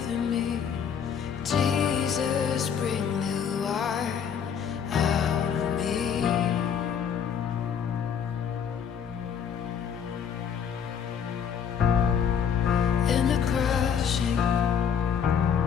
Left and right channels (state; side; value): quieter; right; 7.5 dB